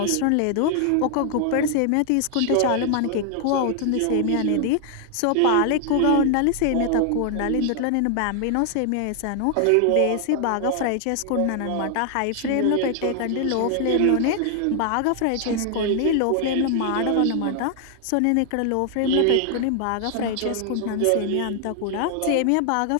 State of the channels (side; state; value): both; different; correlation 0.00